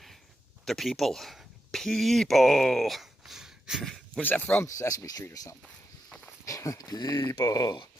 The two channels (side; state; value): both; normal; correlation 0.86